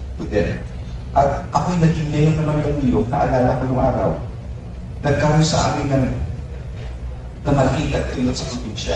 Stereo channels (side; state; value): both; identical; correlation 1.00